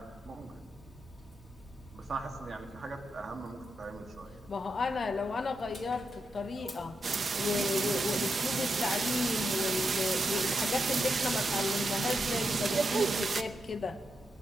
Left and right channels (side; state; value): both; normal; correlation 0.85